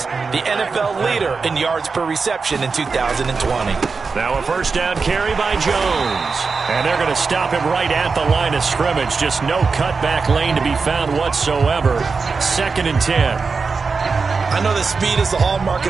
The NFL leader in yards per reception in 2020. Now a first down carry by Jones. And they're going to stop him right at the line of scrimmage. Just no cutback lane to be found whatsoever. 2nd and 10. I know that speed is the hallmark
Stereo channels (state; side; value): quieter; left; 4.7 dB